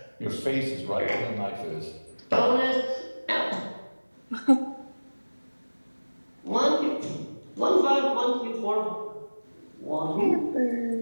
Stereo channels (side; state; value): both; inverted; correlation -1.00